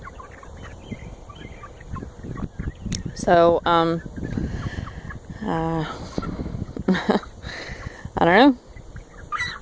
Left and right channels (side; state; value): both; identical; correlation 1.00